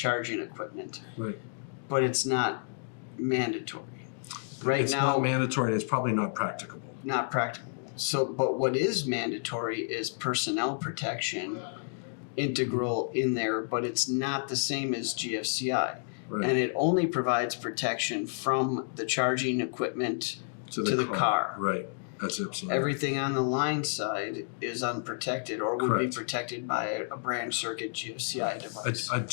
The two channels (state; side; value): silent; right; digital silence